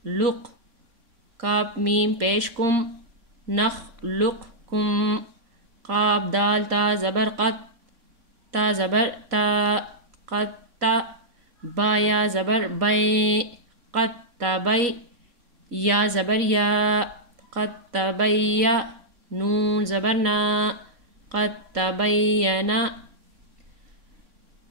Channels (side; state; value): left; late; 4.1 ms